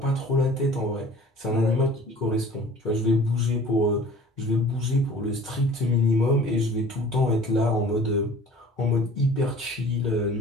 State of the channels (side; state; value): both; normal; correlation 0.47